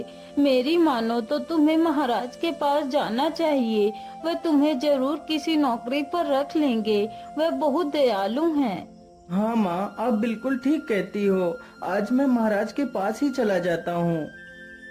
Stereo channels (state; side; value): identical; both; correlation 1.00